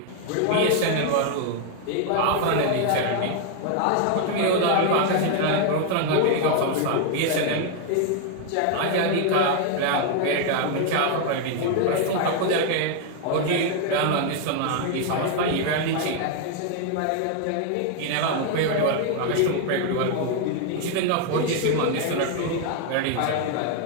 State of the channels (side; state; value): both; different; correlation 0.00